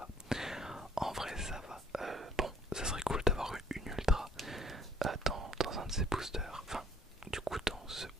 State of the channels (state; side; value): normal; both; correlation 0.59